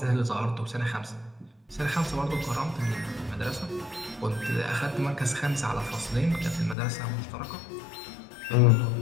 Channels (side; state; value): right; drops out; at 6.8 s